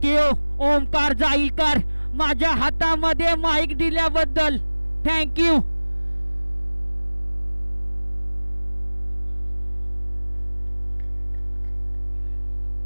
Omkar Jailkar. माझ्या हातामध्ये माईक दिल्याबद्दल थँक्यू.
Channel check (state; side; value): inverted; both; correlation -1.00